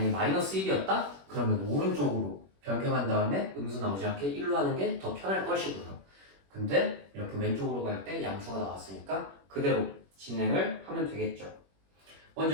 마이너스 1이었다? 그러면 오른쪽으로 변경한 다음에 음수 나오지 않게 1로 하는 게 더 편할 것이고요. 근데 이렇게 왼쪽으로 갈 때 양수가 나왔으니까 그대로 진행을 하면 되겠죠.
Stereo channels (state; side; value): late; left; 21 ms